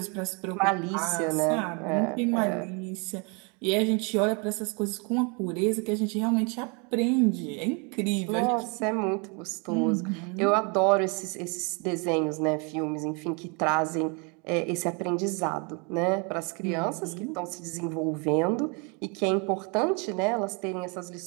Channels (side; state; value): left; quieter; 33.4 dB